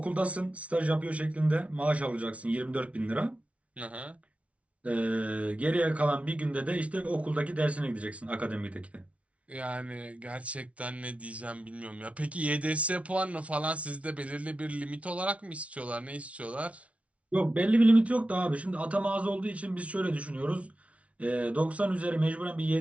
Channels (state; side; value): late; left; 0.064 ms